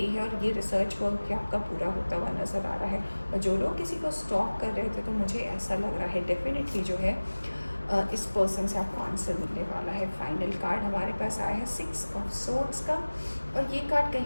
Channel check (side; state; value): both; inverted; correlation -1.00